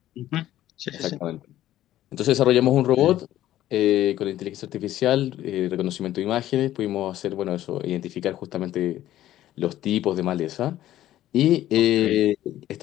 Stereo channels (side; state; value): right; quieter; 13.5 dB